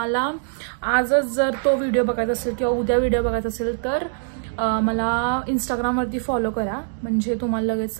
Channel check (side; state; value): left; silent; digital silence